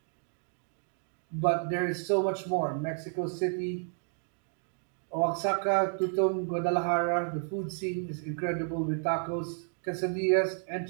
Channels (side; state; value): left; silent; 57 dB below the other